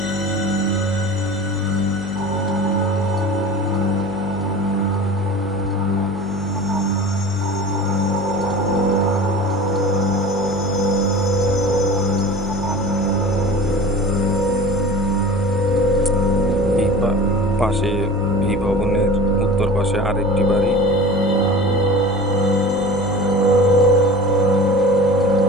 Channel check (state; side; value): normal; both; correlation 0.38